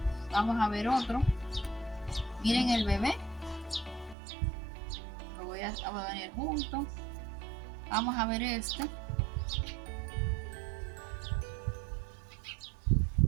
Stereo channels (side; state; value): left; drops out; at 4.2 s